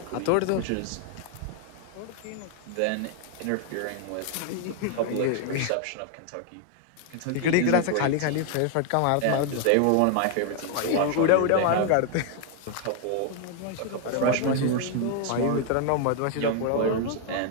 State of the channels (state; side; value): different; both; correlation 0.00